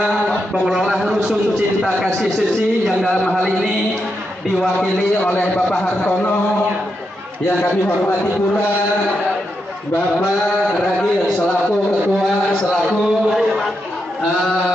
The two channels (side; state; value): both; normal; correlation 0.84